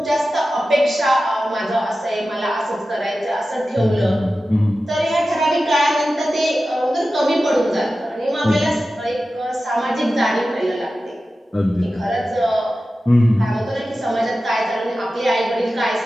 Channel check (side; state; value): both; normal; correlation 0.94